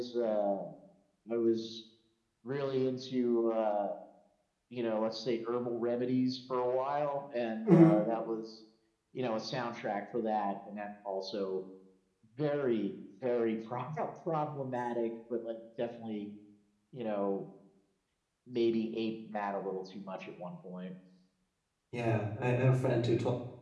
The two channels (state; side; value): identical; both; correlation 1.00